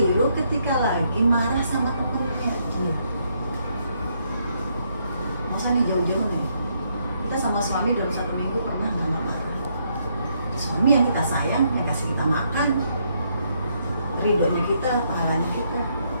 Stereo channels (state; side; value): inverted; both; correlation -0.74